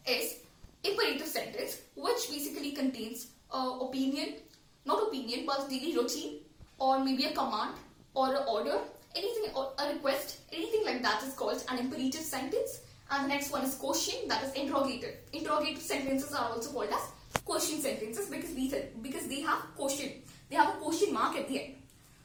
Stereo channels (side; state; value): both; identical; correlation 1.00